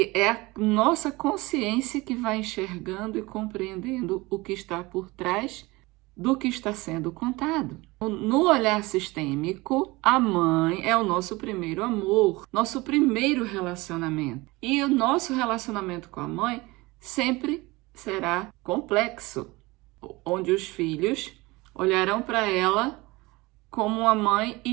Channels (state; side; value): quieter; left; 22.2 dB